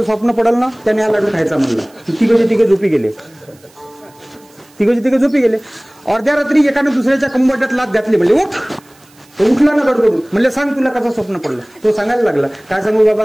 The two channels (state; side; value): noise; right; hiss, 29 dB below the sound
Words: स्वप्न पडल ना त्याने हा लाडू खायचा. म्हणलं 3 झोपी गेले. 3 झोपी गेले. अर्ध्या रात्री एकाने दुसऱ्याच्या कंबरट्यात लाथ घातली. म्हणले उठ. तो उठला ना गडबडून. म्हणले सांग तुला कसं स्वप्न पडलं? तो सांगायला लागला. काय सांगू